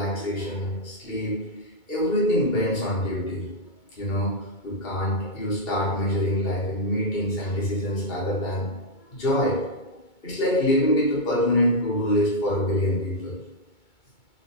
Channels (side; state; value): right; late; 2.2 ms